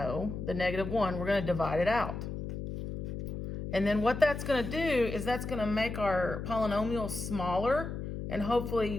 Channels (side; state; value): left; noise; hum, 6 dB below the sound